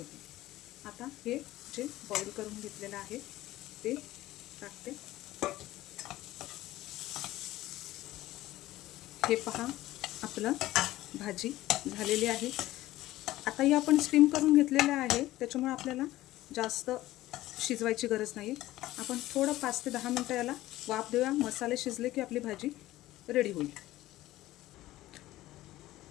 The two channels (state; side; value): quieter; right; 16.1 dB